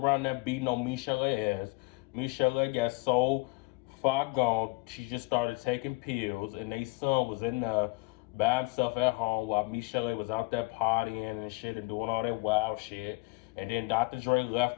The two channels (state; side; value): quieter; right; 25.7 dB